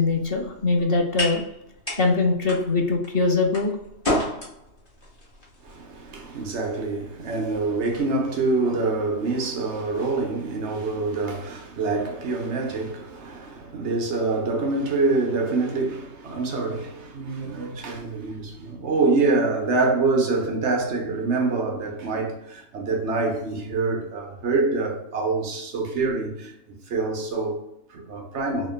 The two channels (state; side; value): late; left; 3.3 ms